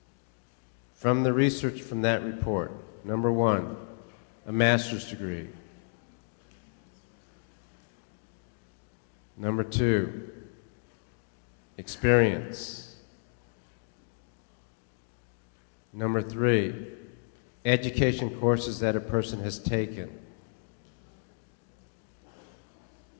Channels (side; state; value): right; silent; digital silence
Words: from the research from that report. Number one, a master's degree. Number two, experience. Number three, education courses that a person has taken.